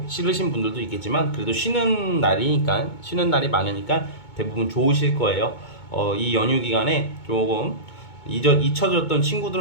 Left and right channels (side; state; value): right; late; 2.2 ms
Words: 싫으신 분들도 있겠지만 그래도 쉬는 날이 많으니까 대부분 좋으실 거예요. 이 연휴 기간에 조금 잊혀졌던